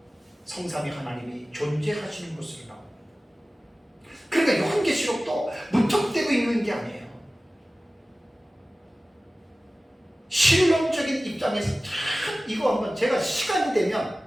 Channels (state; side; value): normal; both; correlation 0.97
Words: 성삼위 하나님이 존재하시는 것으로 나옵니다. 그러니까 요한계시록도 무턱대고 읽는 게 아니에요. 실론적인 입장에서 이거 한번 제가 시간이 되면,